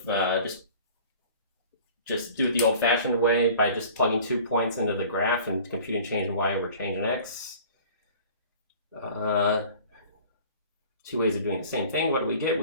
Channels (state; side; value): inverted; both; correlation -0.46